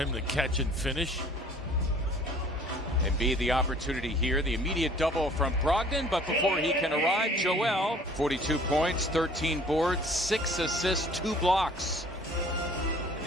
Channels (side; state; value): both; normal; correlation 0.52